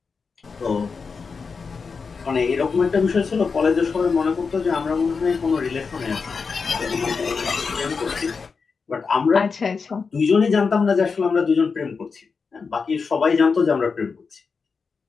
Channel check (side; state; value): right; quieter; 5.1 dB